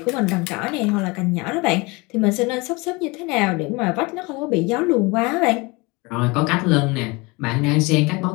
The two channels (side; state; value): right; quieter; 25.6 dB